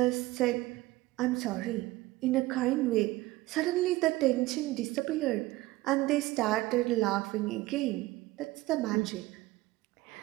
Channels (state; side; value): quieter; left; 18.9 dB